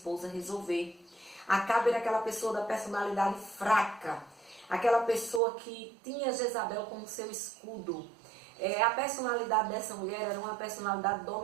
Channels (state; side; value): drops out; left; at 5.4 s